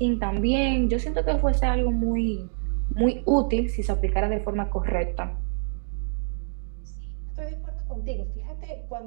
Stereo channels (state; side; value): silent; left; digital silence